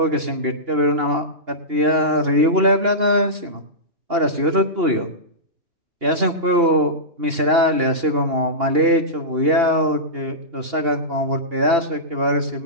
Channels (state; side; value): late; left; 2.8 ms